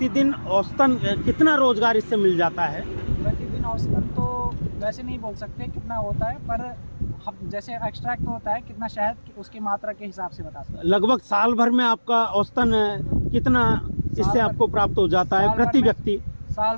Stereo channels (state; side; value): inverted; both; correlation -1.00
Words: औसतन कितना रोजगार इससे मिल जाता है? प्रतिदिन औसतन तो वैसे नहीं बोल सकते कितना होता है, पर हम जैसे एक्सट्रैक्ट होता है कितना शहद, उसकी मात्रा के हिसाब से बता सकते हैं। लगभग साल भर में आपका औसतन कितना इससे आपको प्राप्त हो जाता है प्रति व्यक्ति? साल